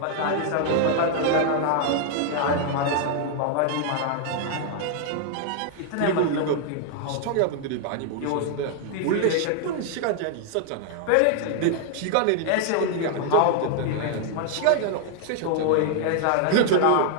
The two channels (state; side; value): different; both; correlation 0.00